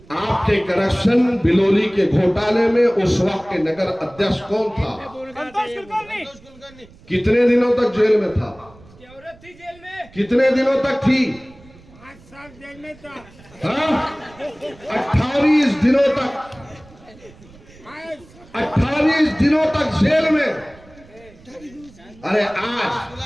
आपके करप्शन बिलोली के घोटाले में उस वक्त के नगर अध्यक्ष कौन था? कितने दिनों तक जेल में था? थी जेल में। कितने दिनों तक थी? 5 साल जेल में था। हाँ, 28 दिनों तक, 28 दिनों तक जेल में। अरे आज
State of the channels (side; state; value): right; noise; rumble, 24 dB below the sound